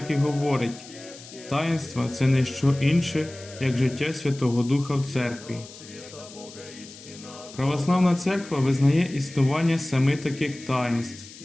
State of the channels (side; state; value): left; noise; hiss, 18 dB below the sound